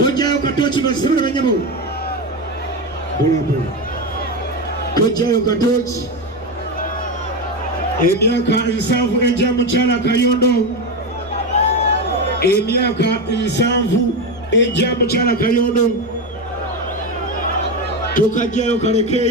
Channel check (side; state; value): left; noise; rumble, 25 dB below the sound